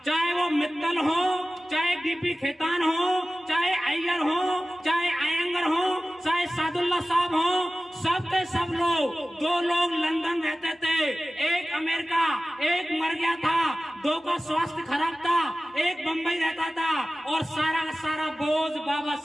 चाहे वो मित्तल हो, चाहे DP खेतान हो, चाहे अय्यर हो, चाहे अयंगर हो, चाहे सादुल्ला साहब हो, सब के सब लोग, 2 लोग लंदन रहते थे, एक अमेरिका, एक मर गया था, 2 का स्वास्थ्य खराब था, एक बंबई रहता था, और सारा का सारा बोझ बाबा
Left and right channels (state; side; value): normal; both; correlation 0.96